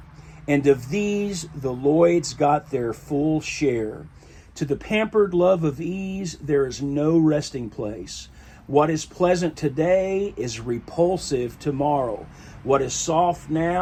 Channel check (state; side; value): identical; both; correlation 1.00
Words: And of these the Lloyds got their full share. To the pampered love of ease there is no resting place. What is pleasant today is repulsive tomorrow. What is soft